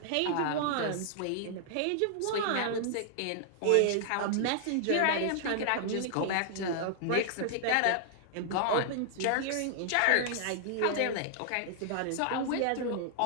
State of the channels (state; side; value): different; both; correlation -0.01